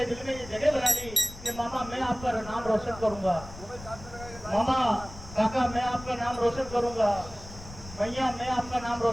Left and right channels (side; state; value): left; noise; rumble, 15 dB below the sound